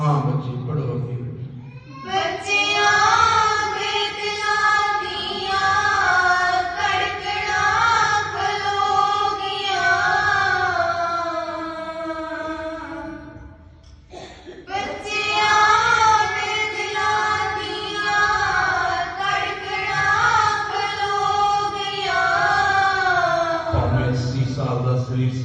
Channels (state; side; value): identical; both; correlation 1.00